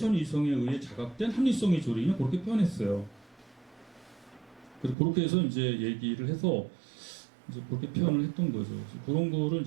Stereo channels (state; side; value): drops out; left; at 5.0 s